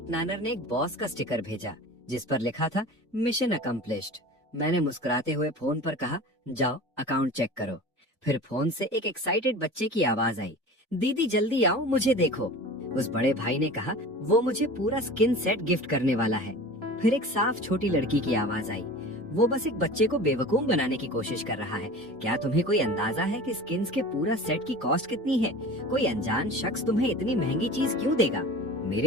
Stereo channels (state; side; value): normal; both; correlation 0.37